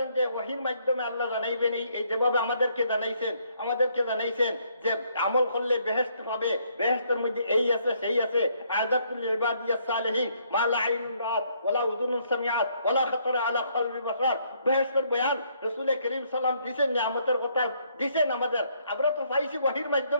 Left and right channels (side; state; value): both; inverted; correlation -0.69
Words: যে ওহীর মাধ্যমে আল্লাহ জানাইবেন, এই যেভাবে আমাদেরকে জানাইছেন যে আমল করলে বেহেশত পাবে, বেহেশতের মধ্যে এই আছে সেই আছে, আযাতুল ইবাদিয়াস সালিহিন মা লা আইনুন রাআত ওয়ালা উযুনুন সামিআত ওয়ালা খাতারা আলা কলবি বাশার। বেহেশতের বয়ান রাসূল করিম সাল্লাল্লাহু আলাইহি দিবেন, নিয়ামতের কথা দিবেন আমাদের। আমরা তো পাইছি ওহীর